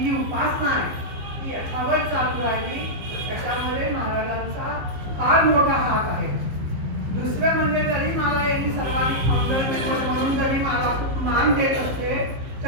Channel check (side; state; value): left; late; 15 ms